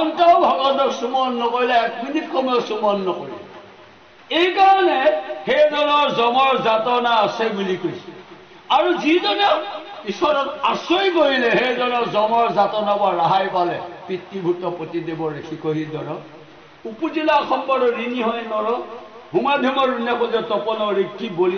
ভগৱন্তক সুমৰণ নকৰিলে 1 মিনিট সময় সুমৰণ নকৰিলে এইকাৰণে সেইজনৰ যমৰ যাতনা আছে বুলি কৈছে আৰু যিজনে ঈশ্বৰক আশ্ৰয় কৰিলে সেইজনৰ যমৰ যাতনাৰ পৰা ৰেহাই পালে পিতৃভূত পতিদেৱৰ শিকহি দৰ উপজিলা সম্পদ ঋণী হয় নৰ হুমাধুমৰ ঋণে তপনৰ ঋক্ষি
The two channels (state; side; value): identical; both; correlation 1.00